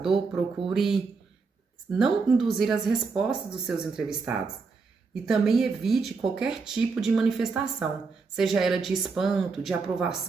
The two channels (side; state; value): left; quieter; 4.6 dB